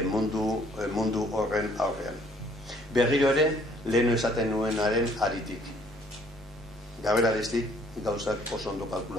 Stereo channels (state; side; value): normal; both; correlation 0.61